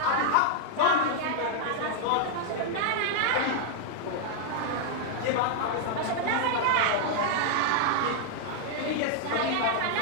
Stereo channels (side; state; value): both; different; correlation 0.00